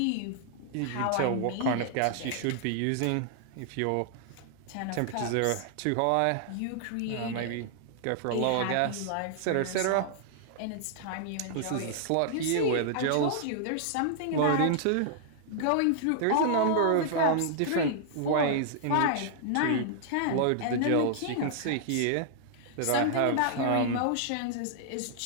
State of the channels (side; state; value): both; different; correlation -0.01